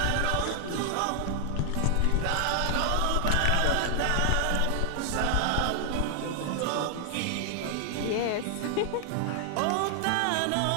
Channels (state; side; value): different; both; correlation 0.00